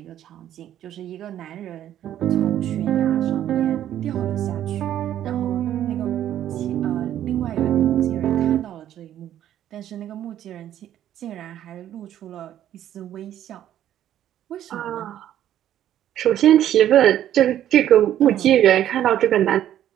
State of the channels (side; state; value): left; quieter; 11.5 dB